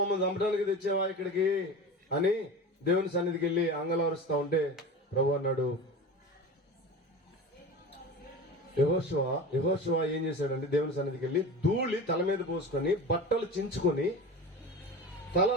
చంపడానికి తెచ్చావా ఇక్కడికి అని దేవుని సన్నిధికి వెళ్ళి అంగలారుస్తా ఉంటే ప్రభు అన్నాడు, యెహోషువ ఏం చేశాడంటే దేవుని సన్నిధికి వెళ్ళి ధూళి తల మీద పోసుకొని బట్టలు చించుకొని తల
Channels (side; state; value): both; normal; correlation 0.32